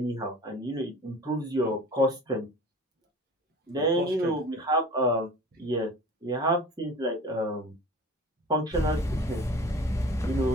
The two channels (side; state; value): both; normal; correlation 0.40